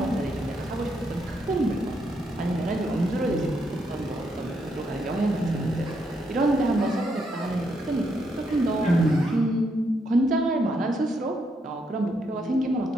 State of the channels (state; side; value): normal; both; correlation 0.77